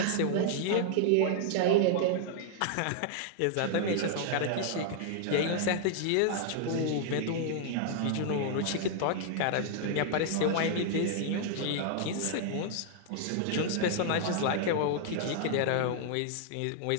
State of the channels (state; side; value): different; both; correlation -0.01